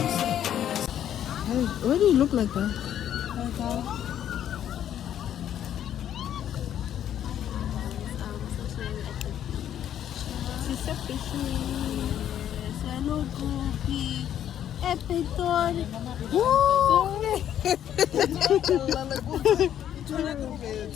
do you look like that?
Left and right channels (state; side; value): quieter; right; 10.4 dB